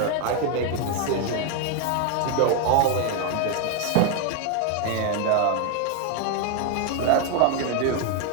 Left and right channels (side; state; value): both; different; correlation 0.01